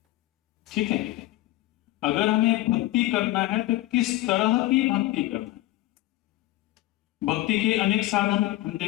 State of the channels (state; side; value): quieter; right; 16.9 dB